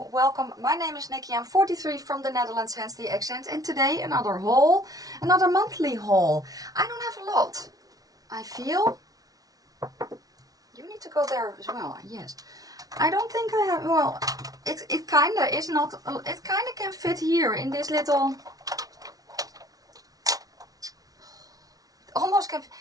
welcome. My name is Nikki. I'm 43 from the Netherlands, hence the accent. And today another haul, another monthly haul. I don't have a lot. I feel. You need to go there as well. Yes. I don't think I have. Well, it kind of is not. It kind of can fit here in this little. Almost can.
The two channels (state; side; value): late; left; 0.18 ms